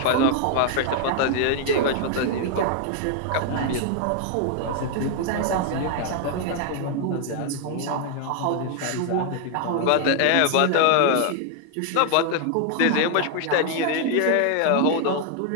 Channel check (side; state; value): both; different; correlation 0.00